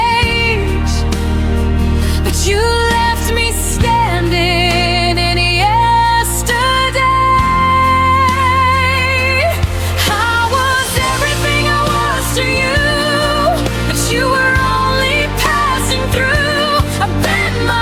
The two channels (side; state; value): both; identical; correlation 1.00